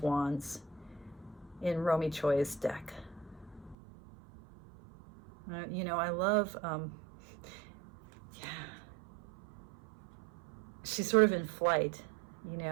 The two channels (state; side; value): drops out; left; at 3.8 s